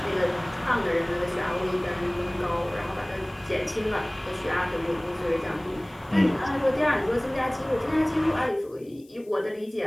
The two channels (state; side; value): noise; left; hiss, 29 dB below the sound